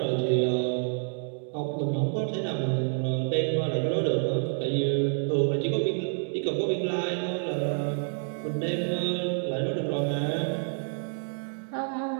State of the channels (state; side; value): silent; left; 59 dB below the other